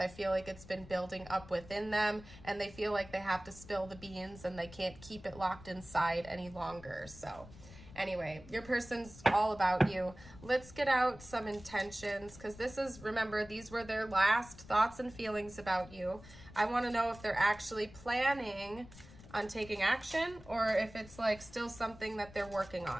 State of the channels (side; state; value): left; noise; rumble, 18 dB below the sound